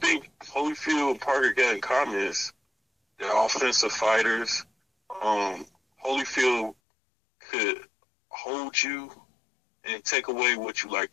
Holyfield and Parker got in common is they're offensive fighters. Holyfield could hold you and take away what you like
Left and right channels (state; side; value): drops out; right; at 6.8 s